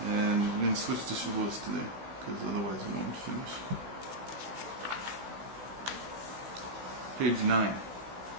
and we're going to switch to Shavuot today, because otherwise we won't finish. Page 9.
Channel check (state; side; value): late; left; 16 ms